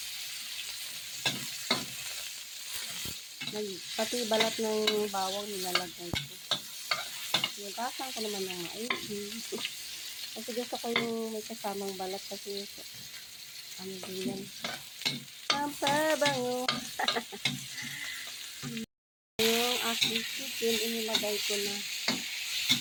Pati balat ng bawang nilalagay ko. Nagasan ko naman ng maigi. Kasi gusto ko yung may kasamang balat kasi ano din yan. Ang pabango. Yung aking chicken, inilagay ko na.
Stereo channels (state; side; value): identical; both; correlation 1.00